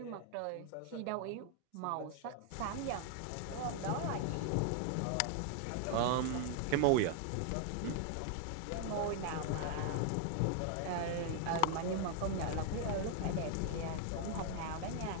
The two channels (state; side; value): different; both; correlation 0.00